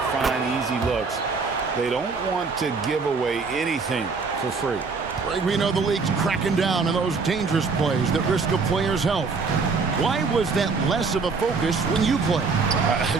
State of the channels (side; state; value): left; quieter; 4.6 dB